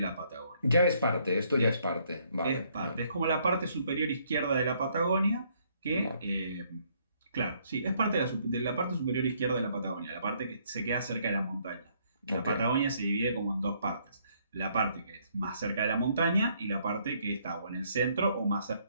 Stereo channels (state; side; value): inverted; both; correlation -0.68